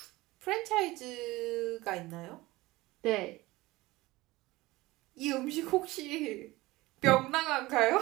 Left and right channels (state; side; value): quieter; left; 19.8 dB